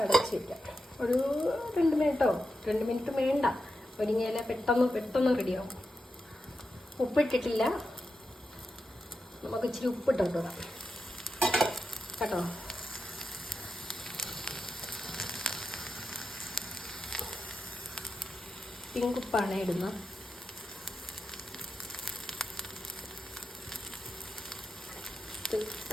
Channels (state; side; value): normal; both; correlation 0.88